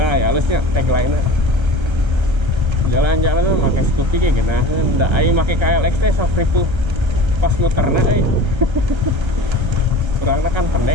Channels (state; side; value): late; left; 1.3 ms